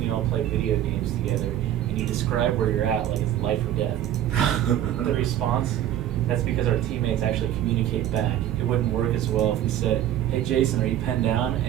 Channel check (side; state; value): left; quieter; 11.7 dB